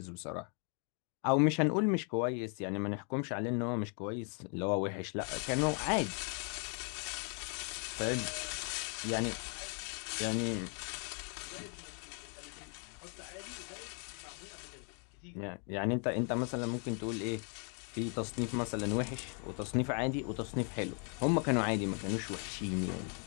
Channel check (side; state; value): right; quieter; 39.5 dB